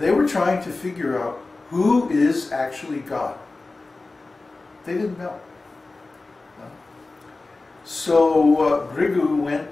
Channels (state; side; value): quieter; right; 3.4 dB